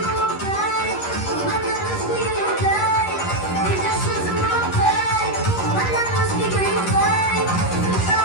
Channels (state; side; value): late; right; 11 ms